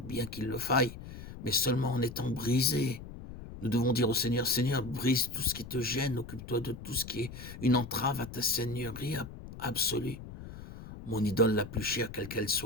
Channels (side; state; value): left; noise; rumble, 13 dB below the sound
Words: qu'il le faille, mais seulement en étant brisé. Nous devons dire au Seigneur, Seigneur, brise tout ce qui te gêne, occupe-toi de tout ce qui est une entrave à ta seigneurie absolue. Mon idole la plus chère, quelle qu'elle